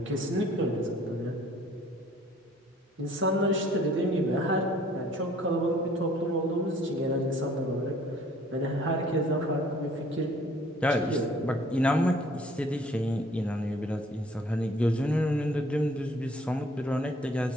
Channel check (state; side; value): normal; both; correlation 0.56